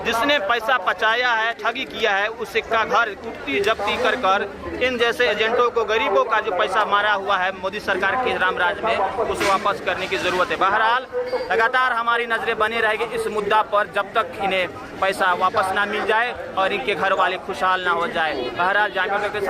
जिसने पैसा पचाया है, ठगी किया है, उसी का घर उठती जब्ती कर इन जैसे एजेंटों को, गरीबों का जो पैसा मारा हुआ है मोदी सरकार के रामराज में, उसे वापस करने की जरूरत है। बहरहाल लगातार हमारी नजरें बनी रहेगी इस मुद्दा पर जब तक इन्हें पैसा वापस ना मिल जाए और इनके घर वाले खुशहाल ना हो जाए। बहरहाल जामिया के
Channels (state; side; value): identical; both; correlation 1.00